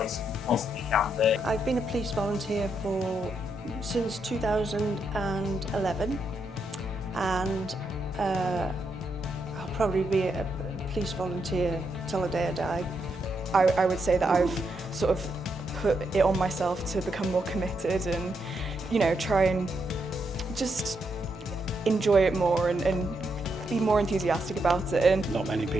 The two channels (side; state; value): both; normal; correlation 0.80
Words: it possibly can be. I've been a police volunteer since 2011, and I'll probably be a police volunteer till the day I die. I would say that I've sort of put it on myself to become more committed and, you know, try and just enjoy it more and be more enthusiastic about it. And not many